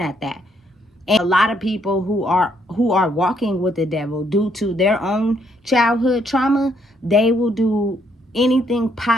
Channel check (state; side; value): normal; both; correlation 0.71